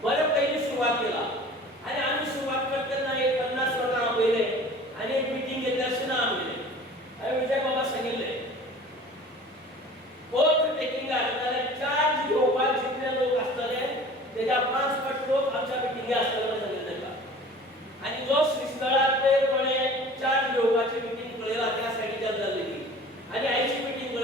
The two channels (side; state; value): both; normal; correlation 0.44